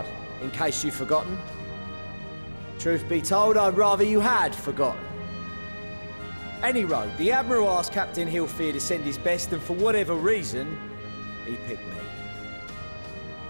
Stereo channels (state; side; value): inverted; both; correlation -1.00